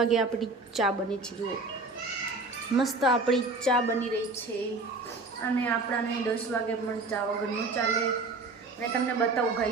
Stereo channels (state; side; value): quieter; left; 3.4 dB